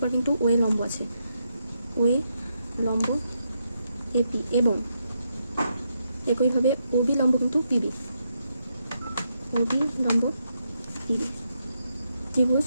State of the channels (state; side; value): inverted; both; correlation -0.81